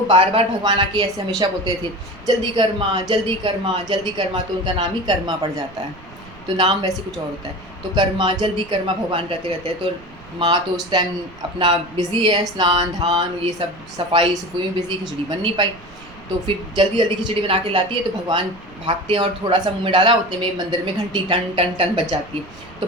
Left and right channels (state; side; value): noise; right; rumble, 22 dB below the sound